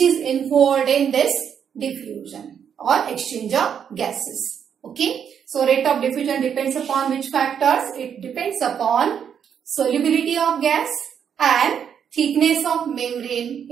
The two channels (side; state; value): left; quieter; 8.0 dB